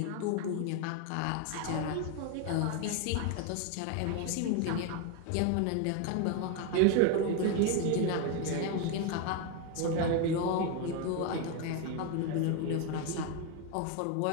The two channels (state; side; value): different; both; correlation 0.01